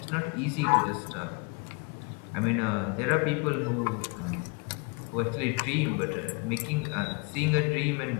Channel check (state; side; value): quieter; right; 31.2 dB